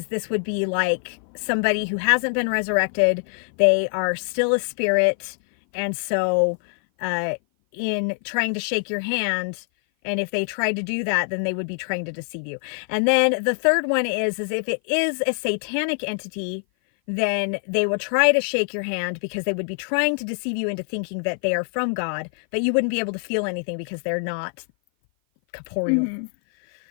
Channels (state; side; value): silent; right; 56 dB below the other